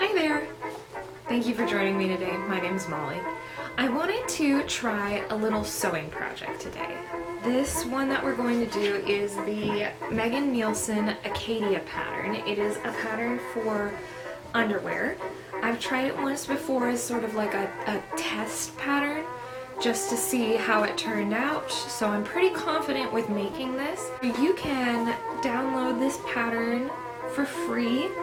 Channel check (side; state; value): both; identical; correlation 1.00